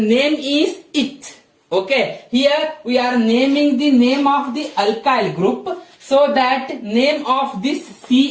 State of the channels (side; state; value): both; identical; correlation 1.00